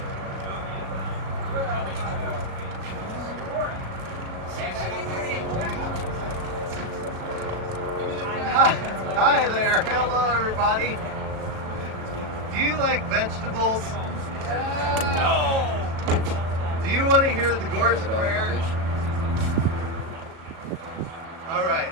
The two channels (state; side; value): late; left; 37 ms